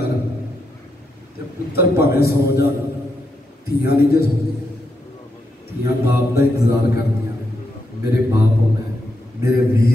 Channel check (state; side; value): normal; both; correlation 0.82